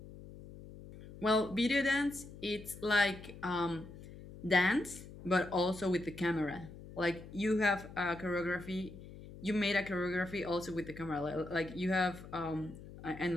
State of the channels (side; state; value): left; noise; hum, 15 dB below the sound